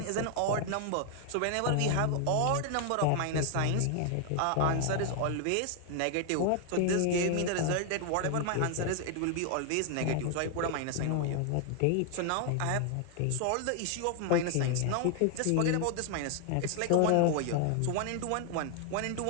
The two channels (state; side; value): different; both; correlation 0.00